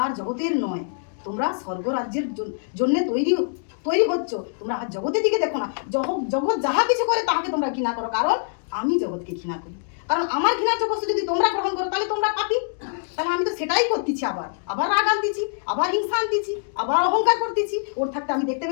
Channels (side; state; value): right; silent; digital silence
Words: আর জগতের নয়, তোমরা স্বর্গরাজ্যের জন্য তৈরি হচ্ছ। তোমরা আর জগতের দিকে দেখো না। জগৎ যাহা কিছু করে তাহাকে তোমরা ঘৃণা করো, কারণ আমি জগৎকে ঘৃণা করি। কারণ আমার ঘৃণার্য বস্তু যদি তোমরা গ্রহণ করো তাহলে তোমরা পাপী। তাহলে আমি তো সেটাই করতেছি, আবার রাগ আনতেছি, আবার হিংসা আনতেছি, আবার অহংকার করতেছি। ওর থাকতে আমি দেখতে